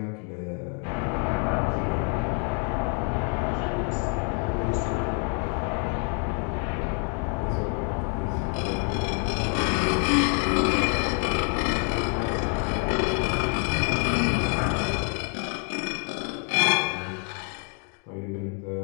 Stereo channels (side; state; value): right; quieter; 39.8 dB